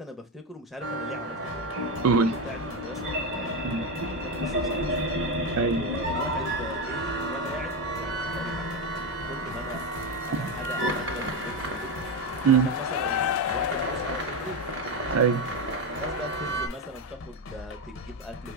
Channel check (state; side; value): normal; both; correlation 0.12